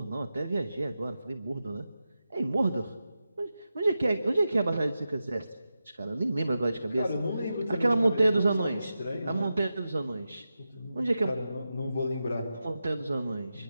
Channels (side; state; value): both; inverted; correlation -0.91